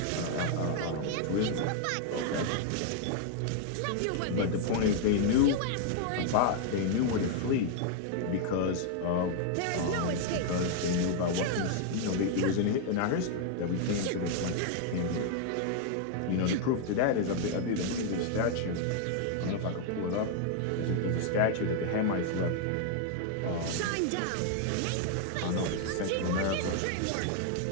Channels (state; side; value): different; both; correlation 0.00